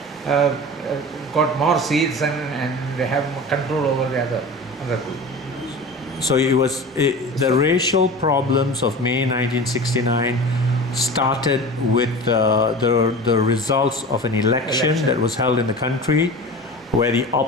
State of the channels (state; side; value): normal; both; correlation 0.33